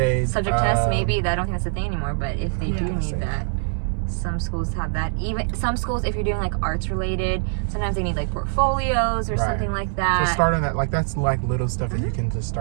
Subject test, maybe. I don't think that's a thing anymore, but if they do need say that, some schools have that. Even some schools, if you're doing like arts related, sometimes they need like portfolios or something like that. So start on that. Like that's like little stuff that you can just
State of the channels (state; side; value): silent; left; digital silence